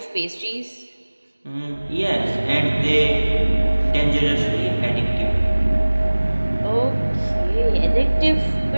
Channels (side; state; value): both; inverted; correlation -1.00